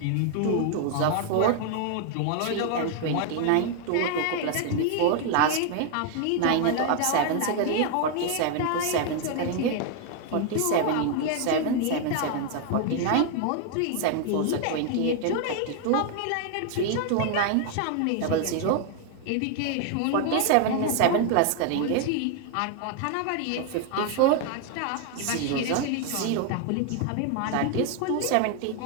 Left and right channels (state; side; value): different; both; correlation 0.00